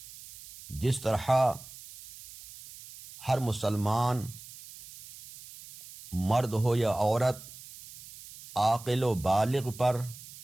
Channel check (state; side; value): noise; right; hiss, 17 dB below the sound